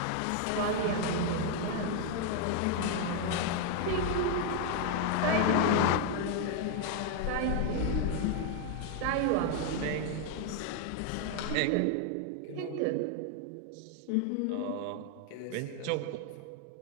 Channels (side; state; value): both; different; correlation 0.00